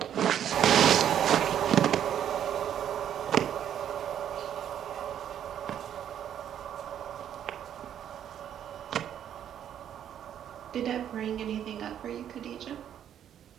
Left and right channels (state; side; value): quieter; left; 9.8 dB